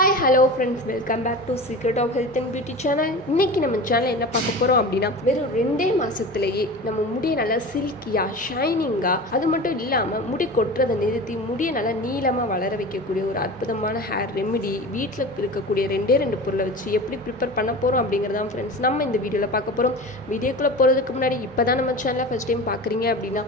hello friends, welcome back to Secret of Health and Beauty channel. இன்னைக்கு நம்ம சேனல்ல என்ன பார்க்க போறோம் அப்படினா வெறும் 2 மாசத்திலேயே நம்ம முடியை நல்லா சில்கியா ஷைனிங்கா அது மட்டும் இல்லாம முடி கொட்றதை நிறுத்தி முடியை நல்லா நீளமா வளர வைக்கக்கூடிய ஒரு அற்புதமான ஹேர் ரெமெடி வீட்ல இருக்கக்கூடிய ரெண்டு பொருளை வச்சு எப்படி ப்ரிப்பேர் பண்ண போறோம் அப்படிங்கறத ஃப்ரெண்ட்ஸ் நம்ம இந்த வீடியோல பார்க்க போறோம். வீடியோக்குள்ள போறதுக்கு முன்னாடி இப்பதான் நம்ம சேனலை ஃபர்ஸ்ட் டைம் பார்க்கறீங்க அப்படினா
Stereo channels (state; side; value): normal; both; correlation 0.32